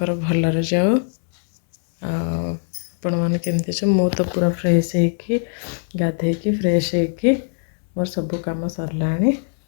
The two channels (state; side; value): silent; right; digital silence